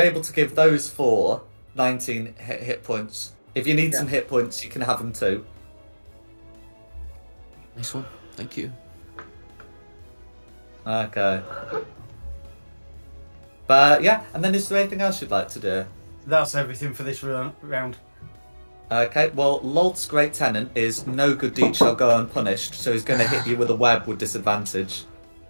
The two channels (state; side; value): inverted; both; correlation -1.00